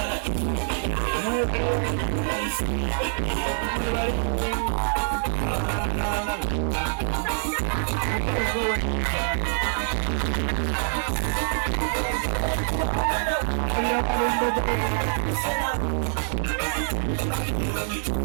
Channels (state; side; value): silent; left; 57 dB below the other